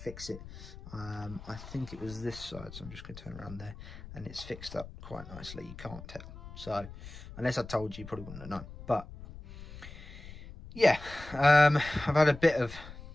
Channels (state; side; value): noise; left; rumble, 14 dB below the sound